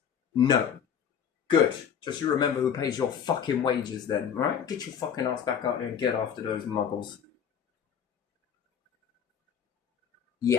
No. Good. Just you remember who pays your fucking wages then, right? Get your fucking ass back out there and get after those muggles.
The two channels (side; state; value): right; quieter; 8.0 dB